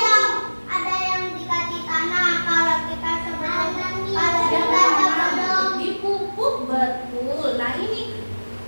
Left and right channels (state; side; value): inverted; both; correlation -1.00